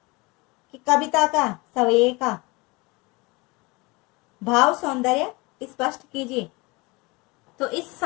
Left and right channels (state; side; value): quieter; right; 25.1 dB